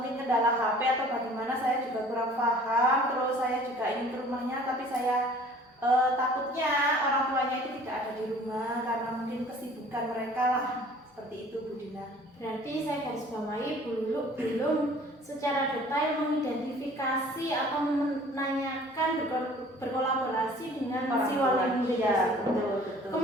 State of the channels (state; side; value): normal; both; correlation 0.50